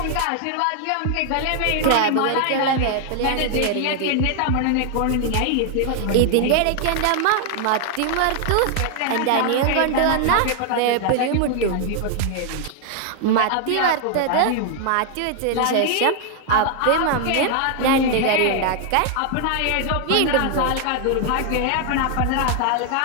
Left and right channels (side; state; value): both; different; correlation 0.00